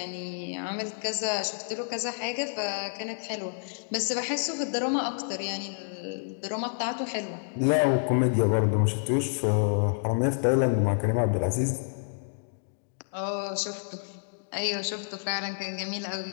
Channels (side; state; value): right; silent; digital silence